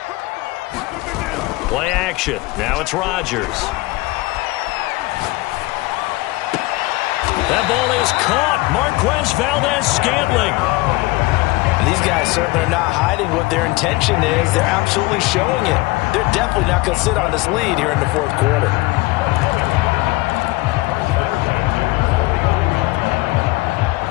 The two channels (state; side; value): quieter; right; 21.5 dB